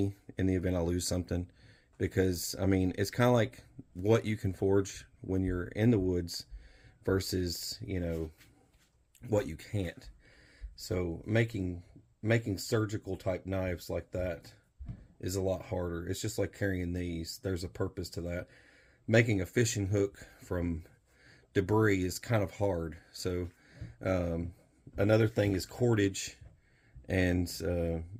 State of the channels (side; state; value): both; identical; correlation 1.00